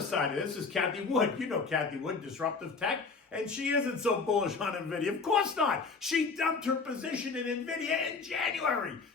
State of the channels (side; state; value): right; quieter; 4.6 dB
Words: side of this is Kathy Wood. You know Kathy Wood, Disruptive Tech. And she isn't so bullish on Nvidia. Of course not. She dumped her position in Nvidia in January,